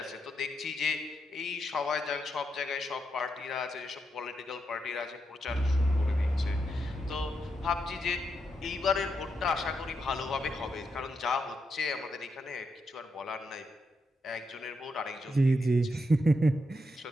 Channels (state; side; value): normal; both; correlation 0.82